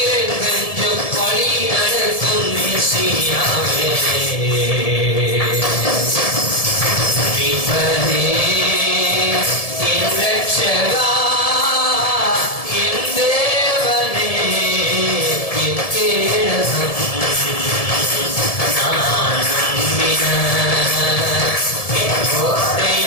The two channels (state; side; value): late; right; 1.7 ms